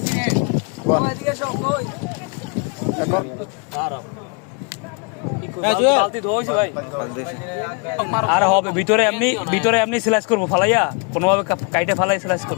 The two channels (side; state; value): right; quieter; 35.3 dB